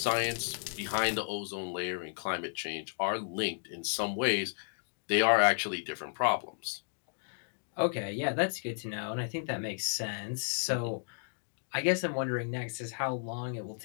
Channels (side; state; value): right; silent; digital silence